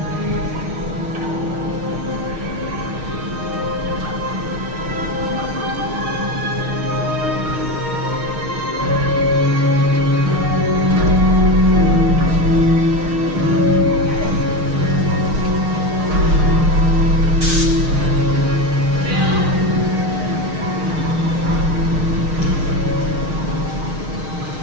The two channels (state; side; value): late; left; 6.4 ms